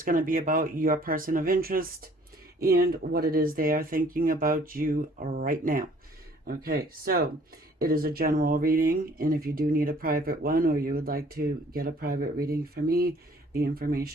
going to be about your person of interest and what it is they are thinking about you right now. Okay, so it is a general reading, and if you do need a private one or you would like to get a private reading from me, the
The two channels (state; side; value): normal; both; correlation 0.56